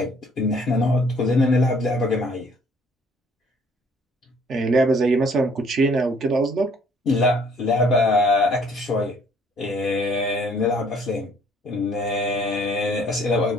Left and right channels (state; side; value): normal; both; correlation 0.60